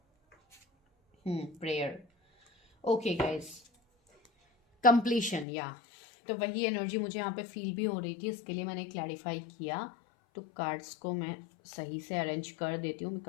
Prayer, okay guys. कंप्लीशन, या तो वही एनर्जी मुझे यहाँ पे फील भी हो रही थी, इसके लिए मैंने क्लैरिफाई किया। तो कार्ड्स को मैं सही से अरेंज कर देती हूँ,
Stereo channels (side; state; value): right; drops out; at 5.5 s